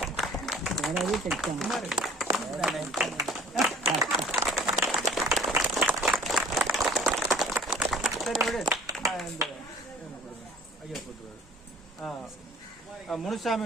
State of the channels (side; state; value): both; normal; correlation 0.49